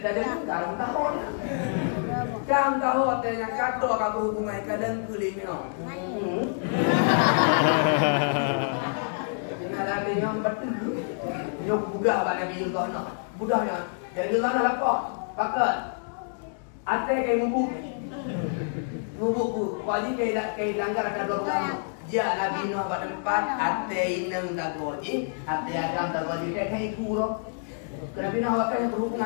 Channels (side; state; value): right; silent; digital silence